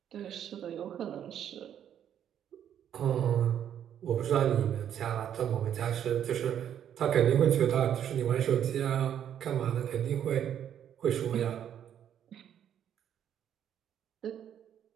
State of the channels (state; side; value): quieter; left; 9.7 dB